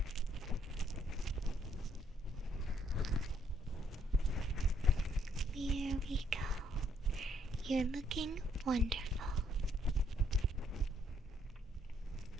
There we go. You're looking wonderful.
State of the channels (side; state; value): both; normal; correlation 0.69